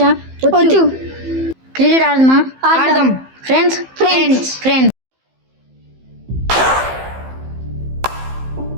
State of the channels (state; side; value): late; left; 15 ms